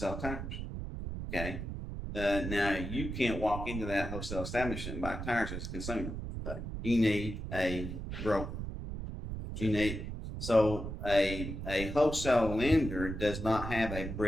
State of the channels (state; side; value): noise; right; rumble, 6 dB below the sound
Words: tires. Okay. Now you can't walk into that wholesale establishment and buy tires as a consumer. Okay. You need a broker. A wholesale lender does not have a